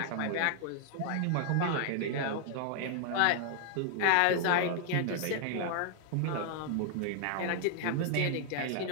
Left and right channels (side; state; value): both; different; correlation 0.00